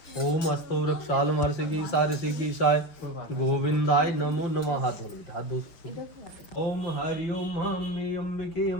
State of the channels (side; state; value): right; late; 5.8 ms